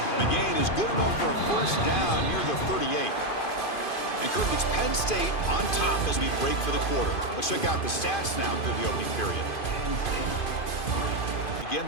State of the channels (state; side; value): late; right; 2.5 ms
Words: The gain is good enough for a first down near the 38. And Kirk, it's Penn State on top as we break for the quarter. Let's check out the stats now through the opening period. Begin